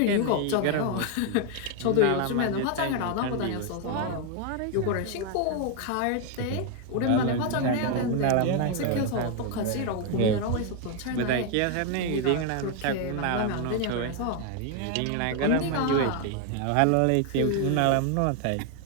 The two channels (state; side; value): different; both; correlation 0.01